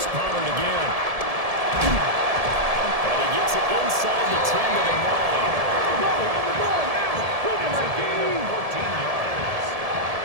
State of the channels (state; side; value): late; left; 1.7 ms